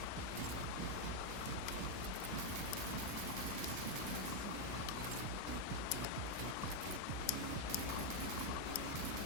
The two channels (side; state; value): both; different; correlation 0.01